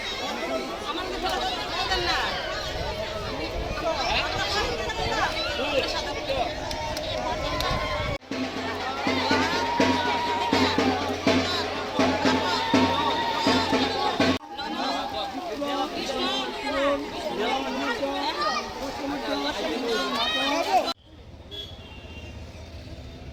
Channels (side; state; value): both; identical; correlation 1.00